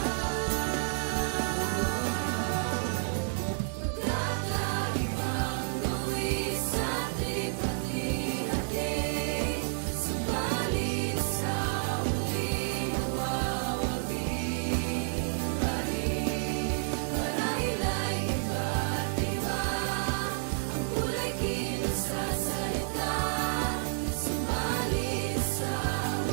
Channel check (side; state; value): left; silent; 58 dB below the other